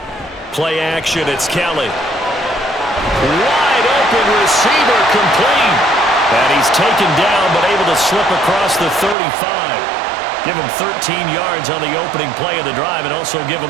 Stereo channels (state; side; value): drops out; left; at 9.2 s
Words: Play action, it's Kelly. Wide open receiver, complete. And he's taken down, but able to slip across the 35. Give him 13 yards on the opening play of the drive and also give